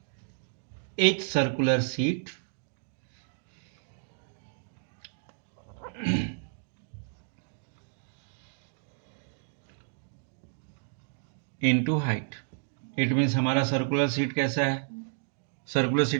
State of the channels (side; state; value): left; silent; digital silence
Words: each circular sheet into height। It means हमारा सर्कुलर सीट कैसा है, सर्कुलर